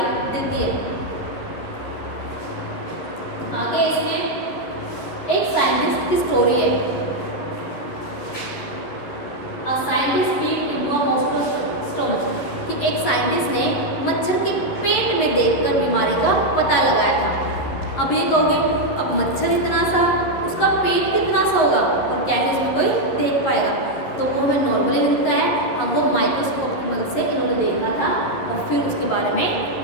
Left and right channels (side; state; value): right; late; 12 ms